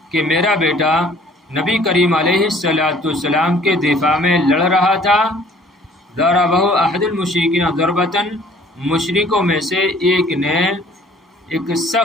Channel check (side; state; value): both; normal; correlation 0.55